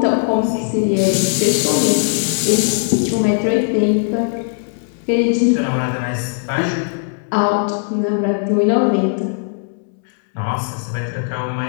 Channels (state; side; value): silent; right; digital silence